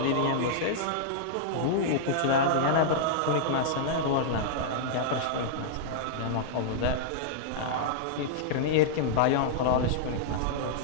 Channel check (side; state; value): both; different; correlation -0.02